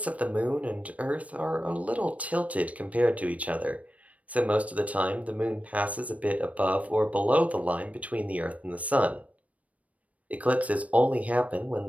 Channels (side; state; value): left; late; 0.068 ms